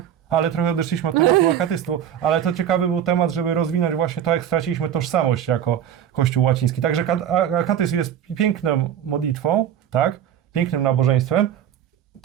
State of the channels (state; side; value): quieter; left; 9.9 dB